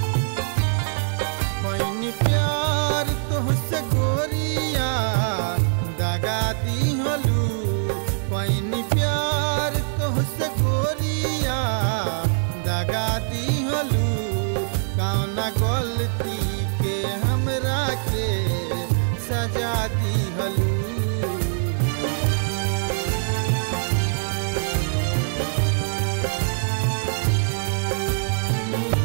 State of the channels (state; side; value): silent; left; 60 dB below the other